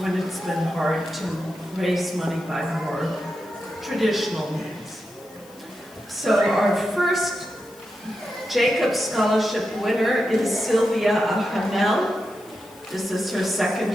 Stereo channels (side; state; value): left; noise; hiss, 25 dB below the sound